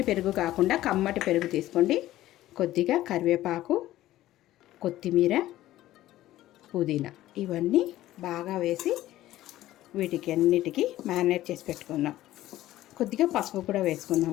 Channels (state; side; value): quieter; right; 14.9 dB